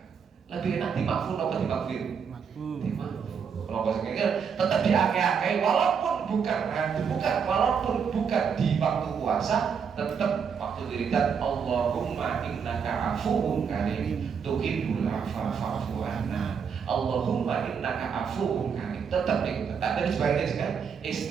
Lebih enak dimakfu apa dimakfir? Dimakfu. Kalau bahasa tetap diake-ake walaupun bukan di waktu puasa, tetap waktu wiridan Allahumma innaka afuwun karim tuhibbul afwa fa'fu anna. Allahumma innaka afuwun karim. Tetap nih, tak dari sebaliknya kan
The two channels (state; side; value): quieter; left; 6.7 dB